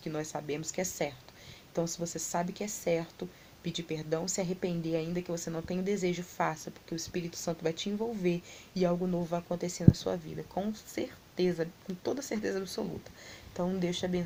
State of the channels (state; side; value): identical; both; correlation 1.00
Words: nós sabemos que é certo. Então, se você sabe que é certo, pedir perdão, se arrepender ainda que você não tenha o desejo, faça, porque o Espírito Santo vai te envolver e algo novo vai acontecer na sua vida, com certeza, com toda certeza absoluta. Então, Deus te